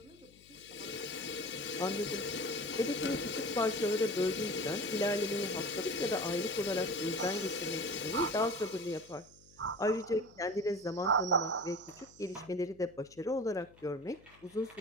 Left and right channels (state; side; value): noise; left; hum, 26 dB below the sound